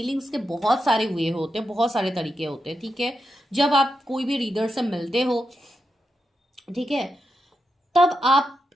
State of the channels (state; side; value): normal; both; correlation 0.86